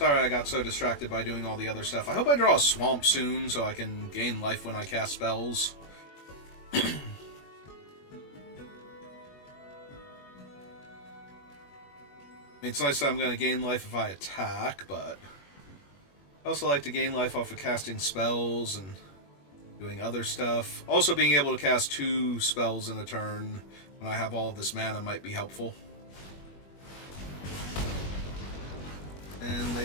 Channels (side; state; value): right; late; 21 ms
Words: I got so distracted by doing all the other stuff. I hope I draw a swamp soon so I can gain life when I cast spells. I mean, it's nice that I'm going to gain life if I attack, but I also like to gain life off of casting spells and doing other stuff. Also, being able to cast 2 spells in a turn when I have all of this mana might be helpful. And